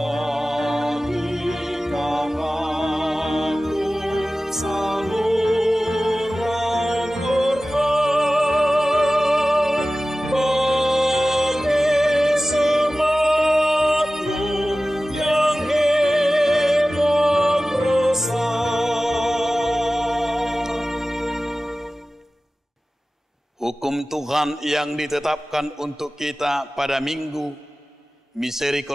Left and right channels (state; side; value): normal; both; correlation 0.96